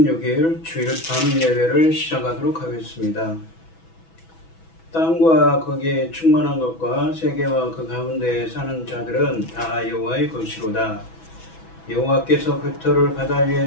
주일 밤 예배를 시작하도록 하겠습니다. 땅과 거기에 충만한 것과 세계와 그 가운데에 사는 자들은 다 여호와의 것이로다. 여호와께서 그 터를 바다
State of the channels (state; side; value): late; right; 6.1 ms